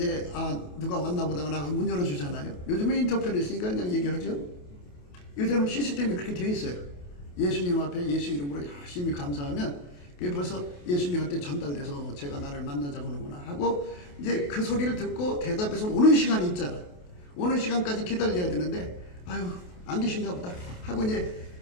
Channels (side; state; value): right; late; 28 ms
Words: 누가 왔나 보다 나 문 열어주잖아요. 요즘에 인터폰이 있으니까 그냥 얘기하죠. 요즘은 시스템이 그렇게 되어 있어요. 예수님 앞에 예수 이름으로 열심히 감사하면 그게 벌써 예수님한테 전달돼서 제가 나를 만나자고 하는구나 하고 이제 그 소리를 듣고 대답해서 오는 시간이 있잖아. 오는 시간까지 기다려야 되는데 안 계신가 보다 하고 이제